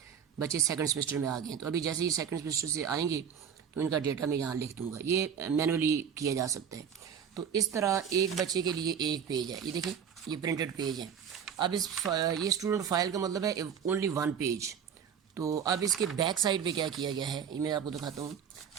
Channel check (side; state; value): left; quieter; 7.8 dB